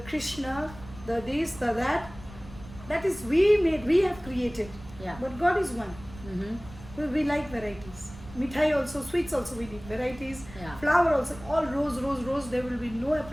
the this, the that. That is we have created. Yeah. But God is one. Mm-hmm. We like varieties. Mithai also, sweets also we need varieties. Yeah. Flower also, all rose. There will be no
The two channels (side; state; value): right; noise; rumble, 17 dB below the sound